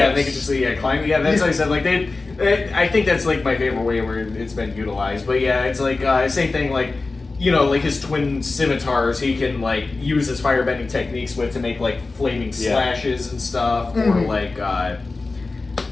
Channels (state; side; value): quieter; right; 3.6 dB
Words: can just climb. Yeah, that's what I said. Like I think that's like my favorite way where it's been utilized. But yeah, it's like same thing like. Like his twin scimitars, he can like use his firebending techniques with to make like flaming slashes and stuff, or like